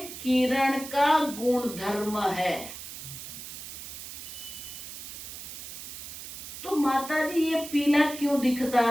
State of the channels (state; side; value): noise; right; hiss, 10 dB below the sound